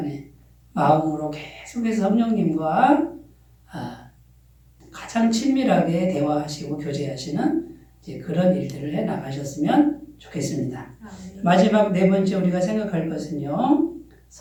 마음으로 계속해서 성령님과 가장 친밀하게 대화하시고 교제하시는 그런 일들을 해 나가셨으면 좋겠습니다. 마지막 네 번째 우리가 생각할 것은요.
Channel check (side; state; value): both; identical; correlation 1.00